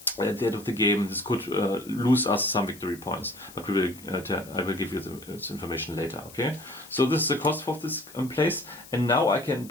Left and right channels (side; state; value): left; noise; hiss, 20 dB below the sound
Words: at the end of the game, this could lose us some victory points. But I will give you this information later. Okay. So this is the cost of this place. And now I can